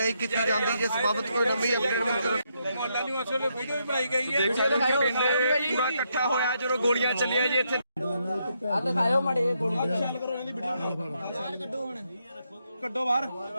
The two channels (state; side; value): inverted; both; correlation -0.78